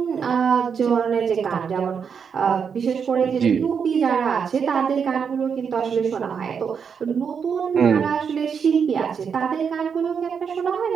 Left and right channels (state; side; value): quieter; left; 6.7 dB